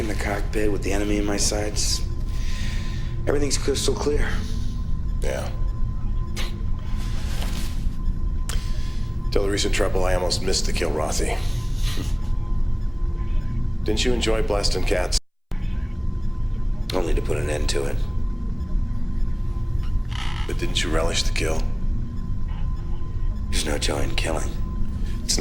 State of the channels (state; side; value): identical; both; correlation 1.00